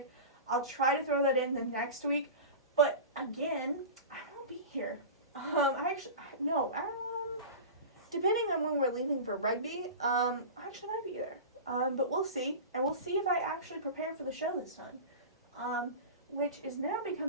I'll try to throw that in the next week, but again, I won't be here. Depending on when we're leaving for rugby, I actually might be there. But we'll see, and we'll see if I actually prepare for the show this time. Which is now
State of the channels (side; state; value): both; inverted; correlation -0.30